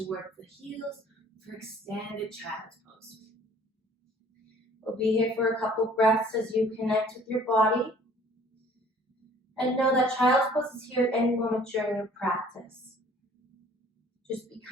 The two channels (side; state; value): both; normal; correlation 0.54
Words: the heels for extended child's pose. We'll be here for a couple breaths as you connect with your body. And know that child's pose is here at any moment during your practice. Just be